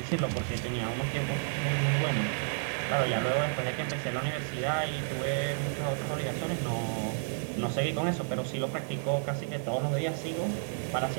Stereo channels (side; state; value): left; silent; 57 dB below the other